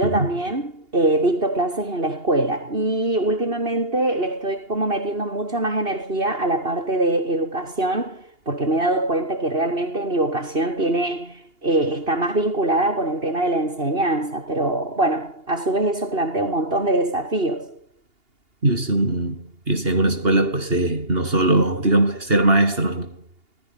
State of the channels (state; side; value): late; left; 2.8 ms